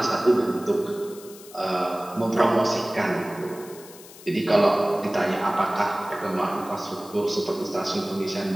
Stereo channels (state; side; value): noise; left; hiss, 19 dB below the sound